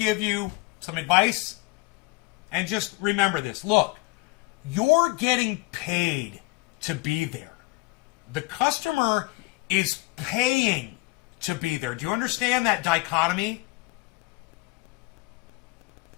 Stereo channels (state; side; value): quieter; right; 23.4 dB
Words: you some advice. And just remember this. Look, you're getting paid to be there. The customer is paying to be there. Do you understand that dichotomy?